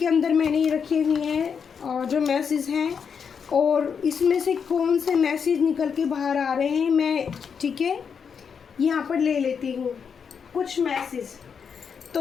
अंदर मैंने ये रखे हुए हैं और जो मैसेज हैं, और इसमें से कौन से मैसेज निकल के बाहर आ रहे हैं मैं, ठीक है, यहाँ पर ले लेती हूँ कुछ मैसेज।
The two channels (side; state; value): right; quieter; 6.6 dB